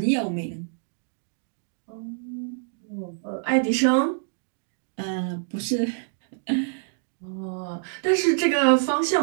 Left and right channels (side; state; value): left; silent; digital silence